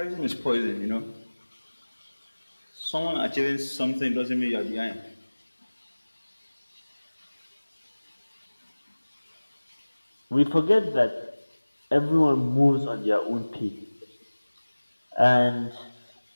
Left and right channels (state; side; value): inverted; both; correlation -1.00